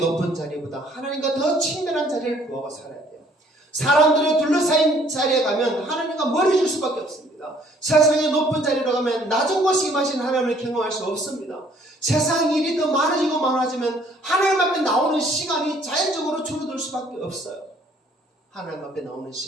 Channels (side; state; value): both; normal; correlation 0.60